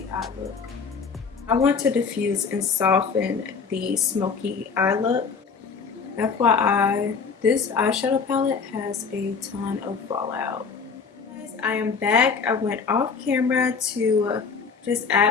eye look. I want to diffuse and soften the smoky eye look. FYI, this eyeshadow palette has a ton of fallout. Guys, I am back. I went off camera to just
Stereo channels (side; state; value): right; quieter; 5.5 dB